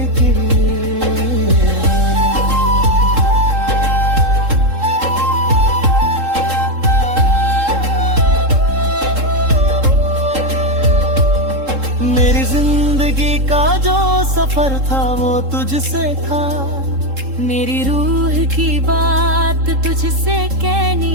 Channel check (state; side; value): late; left; 3.7 ms